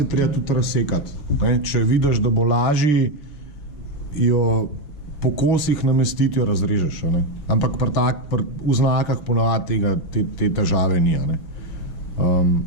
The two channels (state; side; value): late; right; 6.4 ms